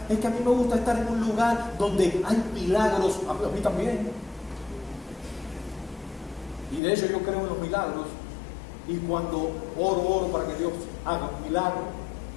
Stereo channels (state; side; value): drops out; right; at 6.8 s